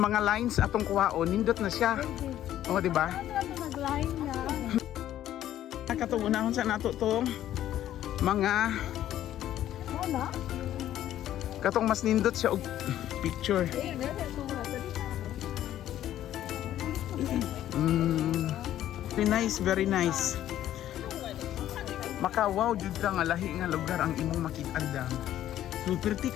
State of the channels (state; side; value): quieter; right; 12.3 dB